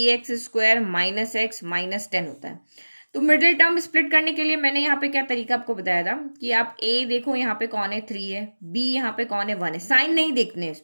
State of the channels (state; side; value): inverted; both; correlation -1.00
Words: - x - 10 होता है। तो मिडिल टर्म स्प्लिट करने के लिए मैंने यहाँ पे क्या तरीका आपको बताया था, कि आप a देखो यहाँ पे कौन है, 3 है, b यहाँ पे कौन है, 1 है, साइन नहीं देखने हैं